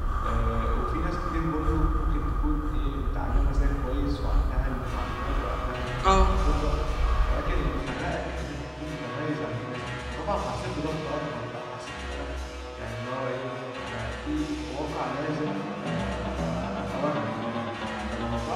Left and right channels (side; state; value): both; identical; correlation 1.00